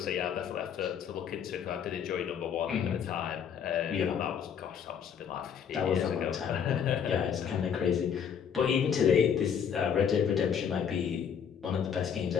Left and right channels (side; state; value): right; quieter; 7.7 dB